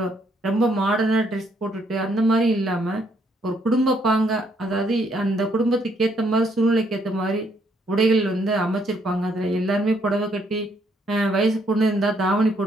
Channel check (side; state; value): both; normal; correlation 0.71